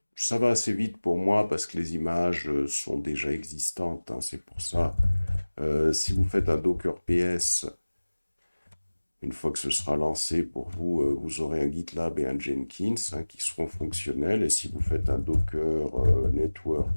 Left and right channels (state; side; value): inverted; both; correlation -1.00